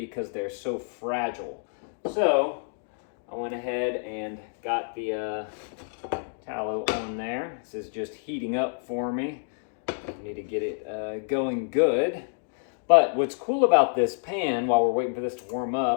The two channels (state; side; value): silent; right; digital silence